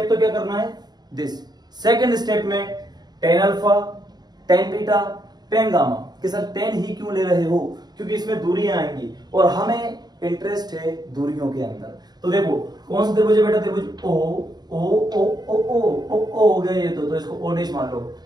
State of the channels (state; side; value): late; left; 0.20 ms